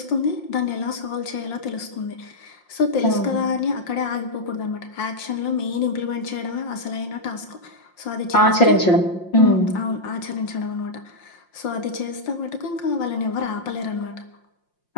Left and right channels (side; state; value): right; late; 5.7 ms